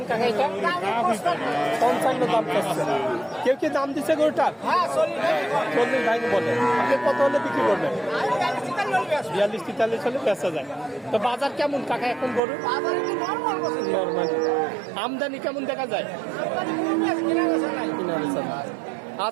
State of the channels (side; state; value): left; drops out; at 12.4 s